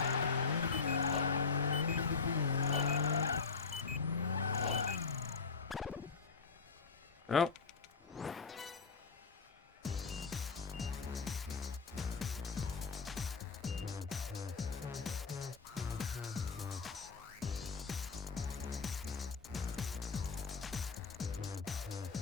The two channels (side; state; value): right; quieter; 5.0 dB